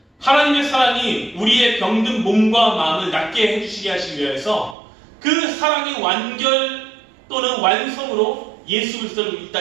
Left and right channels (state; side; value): drops out; left; at 4.8 s